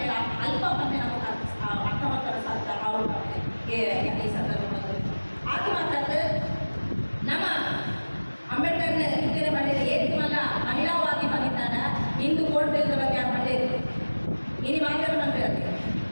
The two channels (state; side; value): inverted; both; correlation -1.00